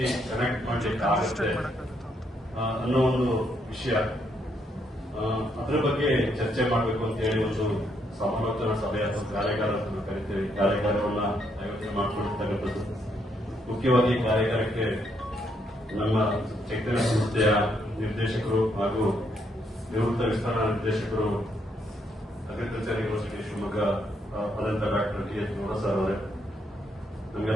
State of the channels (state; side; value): normal; both; correlation 0.75